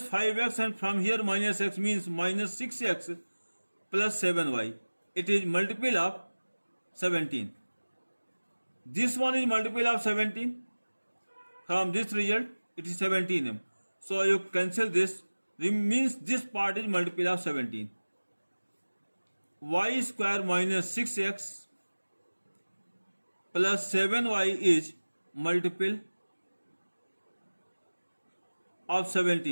5x, and from here minus x means minus 6x plus 7y. It is multiple of 17. This one is multiple of 17. From this result it is 17m. So you cancel this, means this part is multiple of 17. Y square minus 6x plus 7y is multiple of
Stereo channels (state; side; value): inverted; both; correlation -1.00